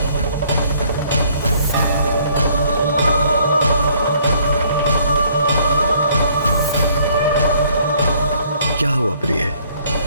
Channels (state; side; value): inverted; both; correlation -0.62